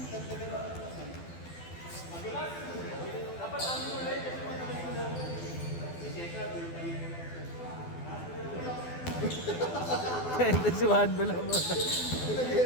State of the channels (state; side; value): late; right; 12 ms